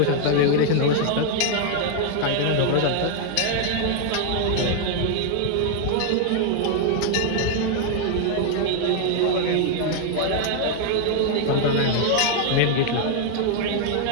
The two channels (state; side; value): different; both; correlation 0.00